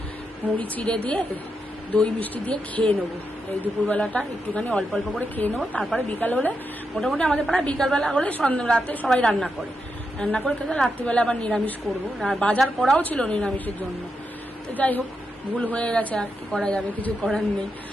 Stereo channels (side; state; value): both; normal; correlation 0.85